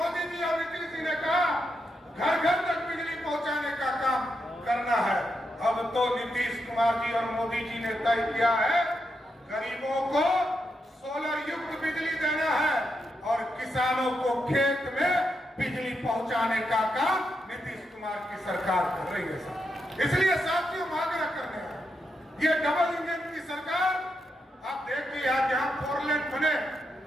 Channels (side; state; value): both; normal; correlation 0.83